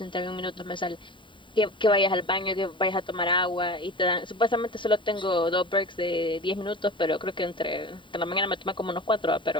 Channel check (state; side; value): late; right; 0.24 ms